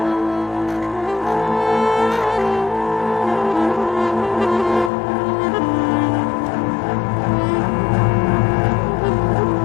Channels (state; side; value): drops out; right; at 4.9 s